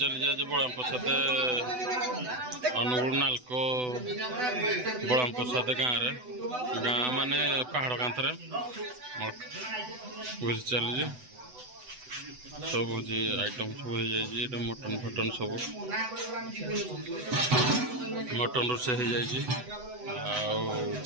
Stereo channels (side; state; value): left; late; 8.0 ms